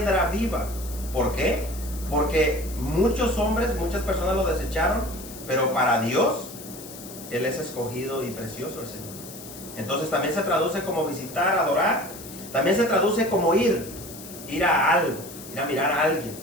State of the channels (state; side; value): noise; left; hiss, 14 dB below the sound